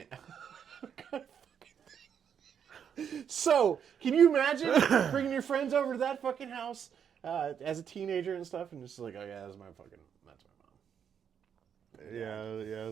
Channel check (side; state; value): left; quieter; 8.0 dB